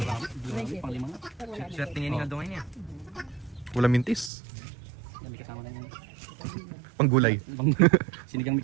pang lima nga. Siya tingin nga doon niya. Wala mintis. Yan, may kasama na yung Panggulay. sinigang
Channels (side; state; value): left; drops out; at 4.3 s